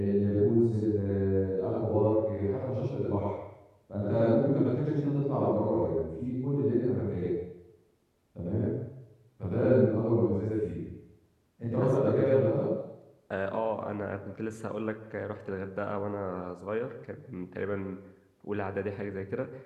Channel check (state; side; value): identical; both; correlation 1.00